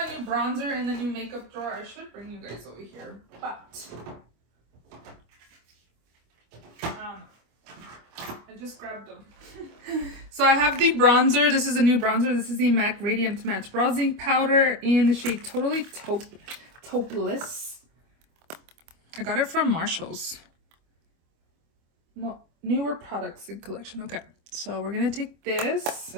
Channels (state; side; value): late; left; 25 ms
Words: a new bronzer in the new makeup drawer. I should bring you guys over here, but I just grabbed them. So I have the bronzer. This is a new bronzer. This is the MAC Radiant Match Bronzing Powder in the shade Totally Topeless. I got it from Marshall's. No, newer products in collection. Okay, so we're gonna take this.